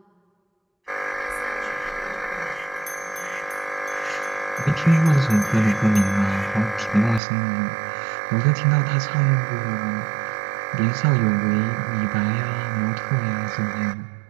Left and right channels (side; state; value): left; drops out; at 7.2 s